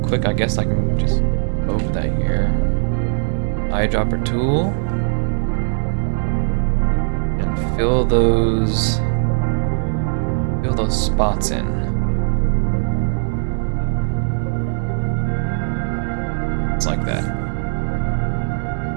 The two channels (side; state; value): left; silent; digital silence